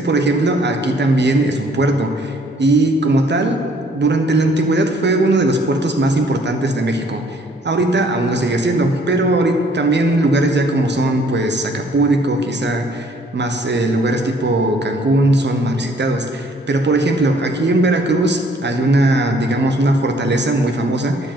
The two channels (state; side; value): normal; both; correlation 0.61